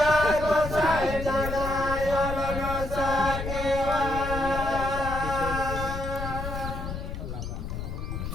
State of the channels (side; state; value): left; noise; rumble, 6 dB below the sound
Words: sai jadaya lolo sakewa